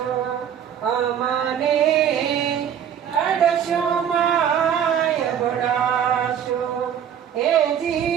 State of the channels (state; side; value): quieter; left; 8.9 dB